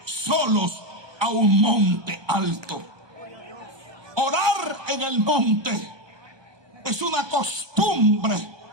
solos, a un monte alto. Orar en el monte es una costumbre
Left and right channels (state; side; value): late; left; 1.2 ms